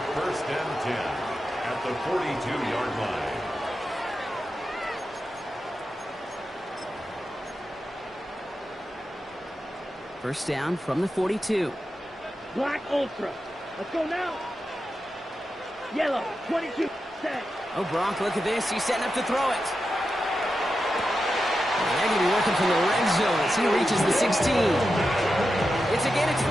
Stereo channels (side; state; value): both; normal; correlation 0.89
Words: 1st and 10 at the 42-yard line. First down from the 42. Black Ultra. Let's go now. Yellow, 22. Set. Oh, Gronk, look at this. He's setting up to throw it. They're going to be working from the red zone as he reaches the 16. It's a gain of